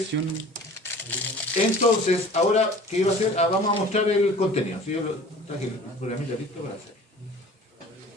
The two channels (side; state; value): both; normal; correlation 0.45